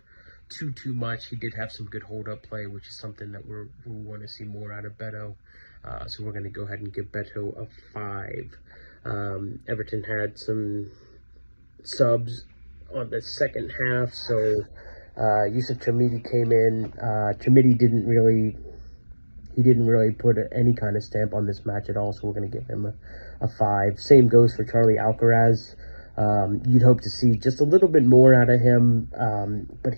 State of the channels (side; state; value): both; inverted; correlation -1.00